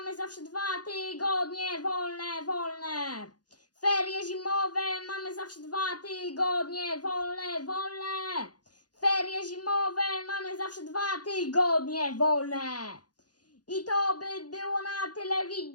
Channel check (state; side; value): late; right; 0.69 ms